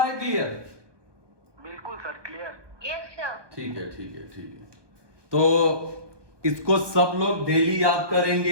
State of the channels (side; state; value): left; late; 1.2 ms